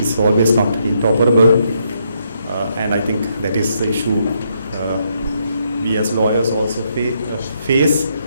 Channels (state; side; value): inverted; both; correlation -0.76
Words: always not interoperable, and I think that is the issue we as lawyers also face